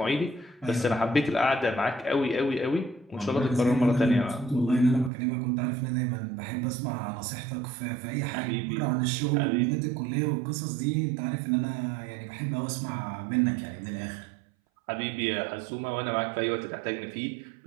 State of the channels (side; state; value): left; drops out; at 5.1 s